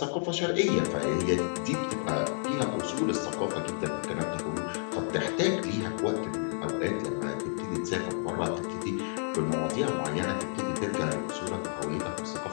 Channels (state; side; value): silent; right; digital silence